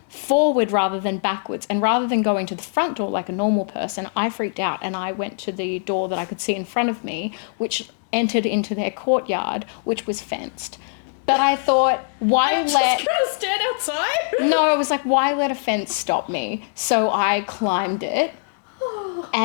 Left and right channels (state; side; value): silent; right; digital silence